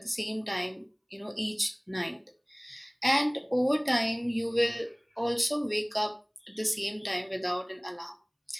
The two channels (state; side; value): identical; both; correlation 1.00